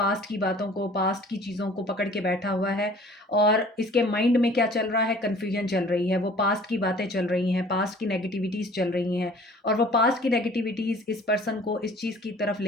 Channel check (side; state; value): both; normal; correlation 0.50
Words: की बातों को, पास्ट की चीज़ों को पकड़ के बैठा हुआ है और इसके माइंड में क्या चल रहा है, कन्फ्यूजन चल रही है। वो पास्ट की बातें चल रही हैं, पास्ट की नेगेटिविटीज़ चल रही हैं और वो पास्ट की नेगेटिविटीज़ इस पर्सन को इस चीज़ की तरफ